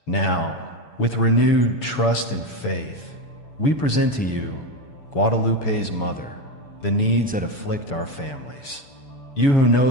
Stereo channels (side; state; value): right; late; 7.0 ms